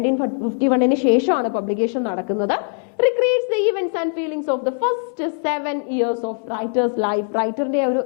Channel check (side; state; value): right; silent; 57 dB below the other